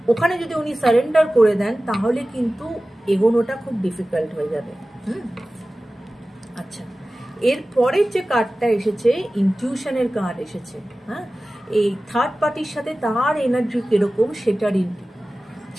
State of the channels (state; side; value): normal; both; correlation 0.96